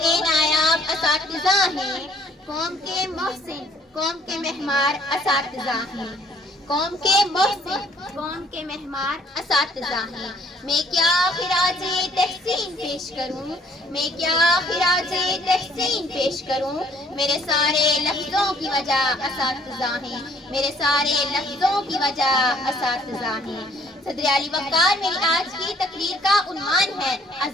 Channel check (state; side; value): normal; both; correlation 0.61